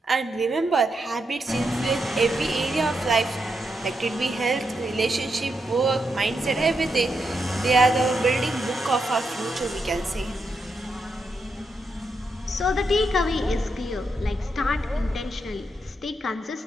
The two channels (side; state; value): both; normal; correlation 0.83